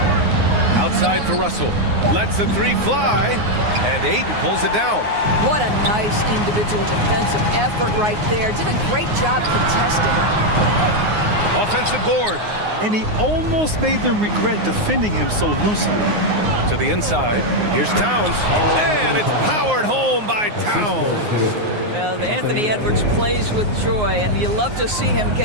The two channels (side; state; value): left; late; 9.6 ms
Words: Outside for Russell. Lets the 3 fly. And Ayton pulls it down. What a nice individual defensive effort right there. Did a great job contesting. Offensive board. And he almost made them regret defending him so loosely. To the inside. Here's Towns. And it's powered home by Towns. Well, Anthony Edwards plays with joy, and you love to see him